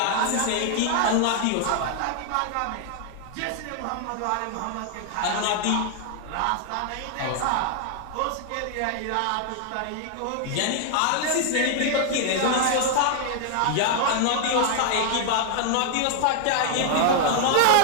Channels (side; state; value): both; different; correlation 0.00